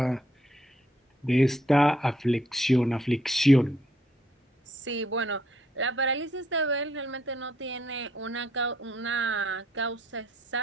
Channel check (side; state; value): both; normal; correlation 0.70